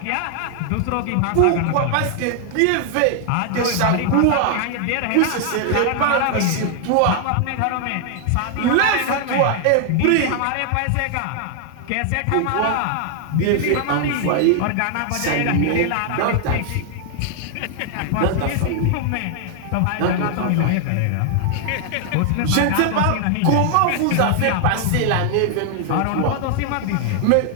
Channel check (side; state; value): both; different; correlation 0.00